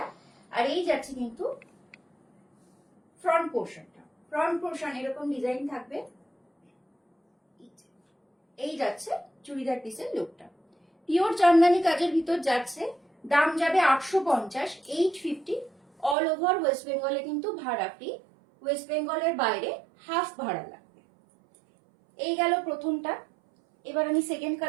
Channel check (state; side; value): drops out; left; at 16.2 s